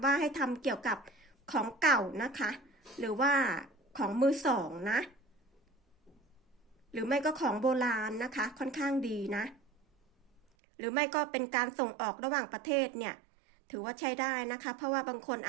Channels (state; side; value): drops out; left; at 10.4 s